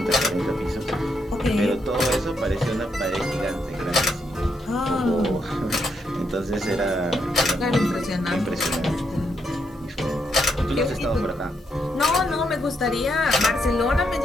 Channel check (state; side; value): normal; both; correlation 0.79